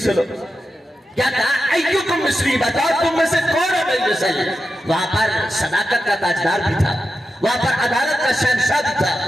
ہو۔ کیا کہا؟ ایکم مثلی، بتاؤ تم میں سے کون ہے میری مثل؟ وہاں پر صداقت کا تاجدار بھی تھا، وہاں پر عدالت کا شہنشاہ بھی تھا،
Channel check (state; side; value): normal; both; correlation 0.90